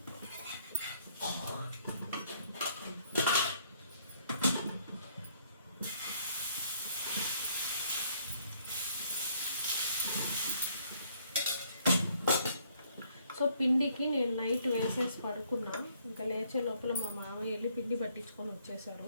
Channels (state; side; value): inverted; both; correlation -0.66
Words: సో పిండికి నేను నైట్ వేసేసి పడుకున్నా. ఇంకా లేచే లోపల మా మామయ్య వెళ్ళి పిండి పట్టించుకొని వచ్చేసారు.